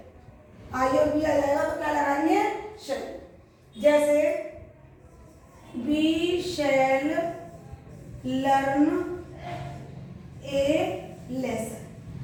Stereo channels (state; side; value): identical; both; correlation 1.00